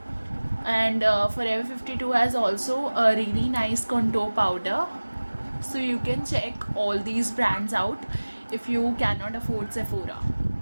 and Forever 52 has also a really nice contour powder. So you can check all these brands out if you cannot afford Sephora.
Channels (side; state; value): both; inverted; correlation -1.00